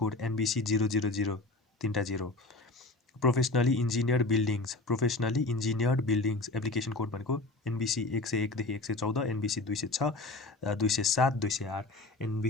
NBC 000 0. Professionally engineered buildings application code भनेको NBC 101 देखि 114, NBC 206, 207, 208,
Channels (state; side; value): quieter; right; 3.2 dB